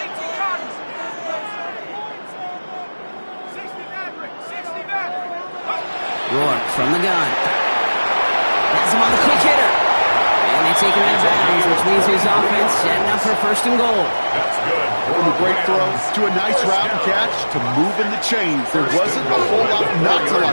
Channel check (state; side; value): inverted; both; correlation -1.00